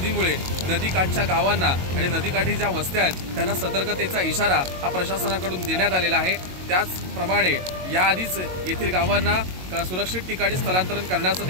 नदीकाठच्या गावांना आणि नदीकाठी ज्या वस्त्या आहेत त्यांना सतर्कतेचा इशारा हा प्रशासनाकडून देण्यात आलेला आहे। त्याचप्रमाणे याआधीच येथील गावांना सुरक्षित ठिकाणी स्थलांतरण करण्याचं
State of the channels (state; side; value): late; left; 22 ms